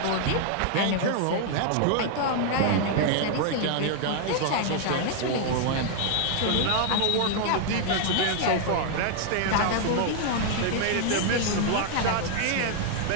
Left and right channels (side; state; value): both; different; correlation 0.00